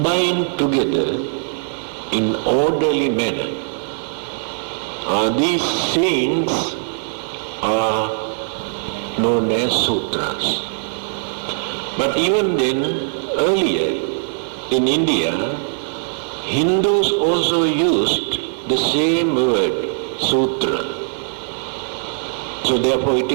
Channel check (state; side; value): silent; left; 66 dB below the other